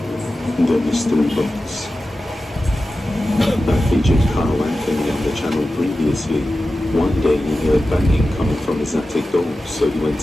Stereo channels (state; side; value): normal; both; correlation 0.94